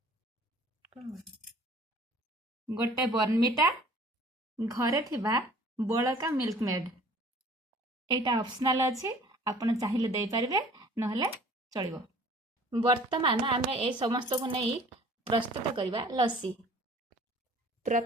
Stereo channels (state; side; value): normal; both; correlation 0.51